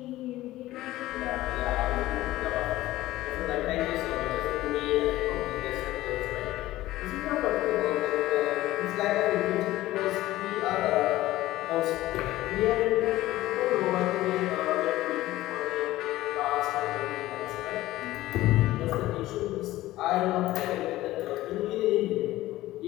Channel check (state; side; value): quieter; right; 16.4 dB